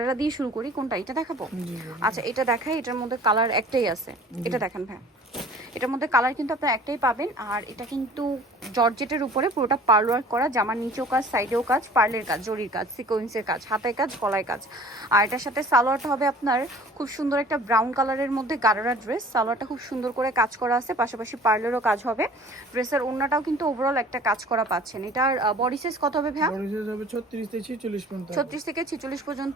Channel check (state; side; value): normal; both; correlation 0.48